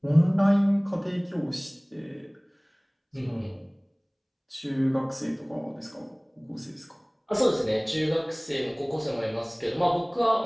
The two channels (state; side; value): identical; both; correlation 1.00